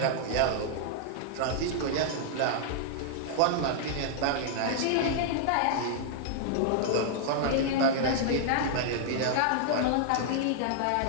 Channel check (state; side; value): different; both; correlation -0.01